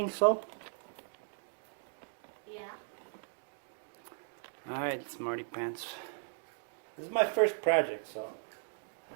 so? Yeah. Alright, Smarty Pants. This is my first project, so.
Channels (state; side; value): silent; left; digital silence